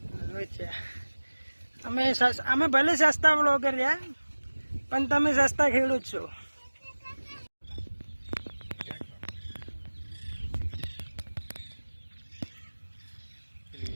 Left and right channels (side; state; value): both; inverted; correlation -1.00